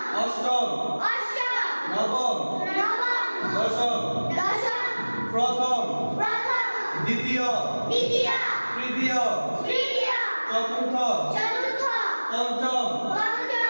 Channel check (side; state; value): both; inverted; correlation -1.00